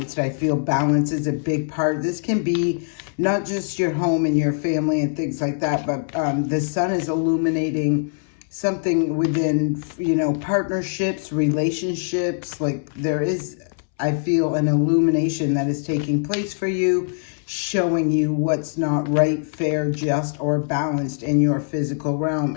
I feel balance is a big part. This can be not just your home and your family and things like that, but the sun is illuminating something within, partnerships, relationships. Like there is, I feel, an illumination that is taking place for you, showing you what's not right, fair, just, or balanced in your physical realm.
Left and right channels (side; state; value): right; silent; 64 dB below the other